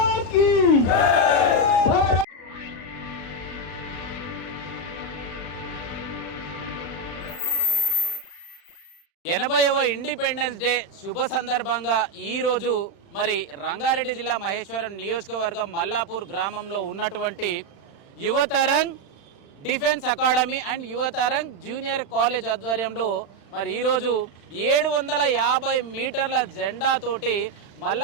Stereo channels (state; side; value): late; right; 35 ms